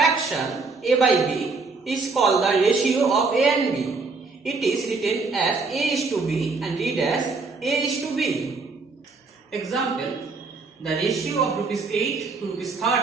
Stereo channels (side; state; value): left; quieter; 4.1 dB